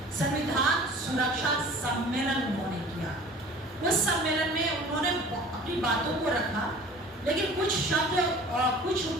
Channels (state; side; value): normal; both; correlation 0.45